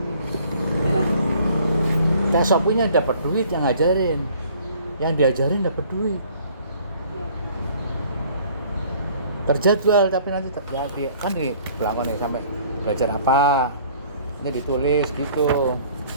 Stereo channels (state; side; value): inverted; both; correlation -0.55